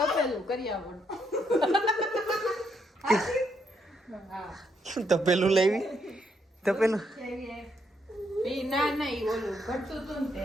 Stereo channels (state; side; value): normal; both; correlation 0.75